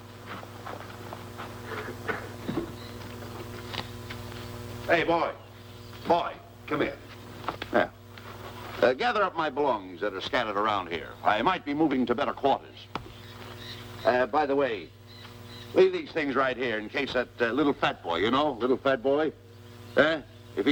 Hey, boy. Boy, come here. Yeah. Gather up my belongings that are scattered around here. I might be moving to better quarters. By the way, leave these things right here in case that little fat boy, you know, little fat boy, if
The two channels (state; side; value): identical; both; correlation 1.00